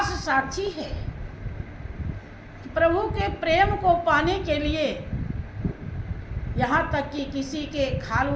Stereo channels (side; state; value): both; identical; correlation 1.00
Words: साक्षी है कि प्रभु के प्रेम को पाने के लिए यहाँ तक कि किसी के खाल